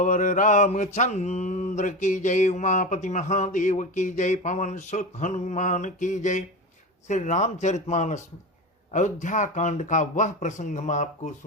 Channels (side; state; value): both; normal; correlation 0.23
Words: रामचंद्र की जय। उमापति महादेव की जय। पवन सुत हनुमान की जय। श्री रामचरितमानस अयोध्या कांड का वह प्रसंग हम आपको